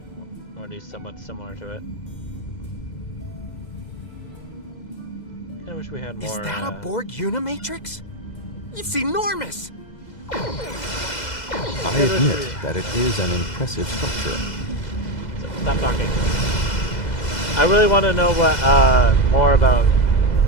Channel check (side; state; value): right; late; 2.0 ms